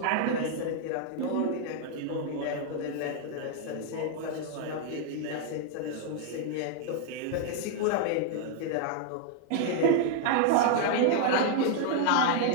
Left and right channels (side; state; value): both; different; correlation 0.00